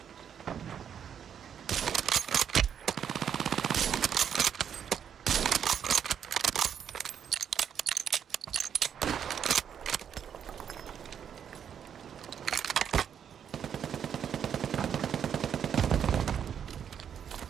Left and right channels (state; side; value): quieter; left; 8.3 dB